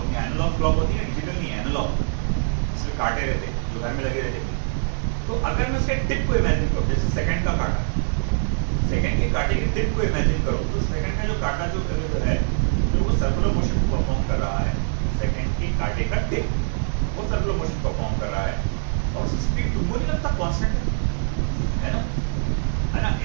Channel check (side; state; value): left; silent; digital silence